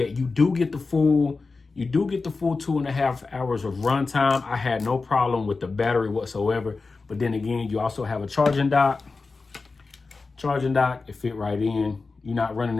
You do get the full 2.5 hours of runtime. I had no problem with the battery whatsoever. But then again, you also have a charging dock. It fit right in. You're not running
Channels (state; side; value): quieter; right; 4.1 dB